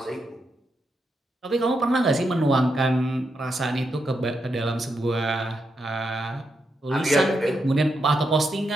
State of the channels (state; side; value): normal; both; correlation 0.83